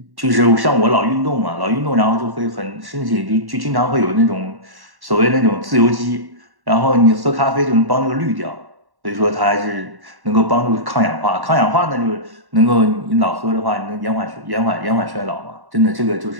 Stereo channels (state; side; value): late; left; 1.1 ms